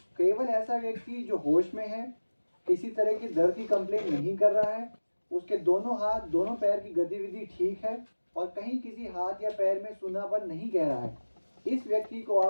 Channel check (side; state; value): both; inverted; correlation -1.00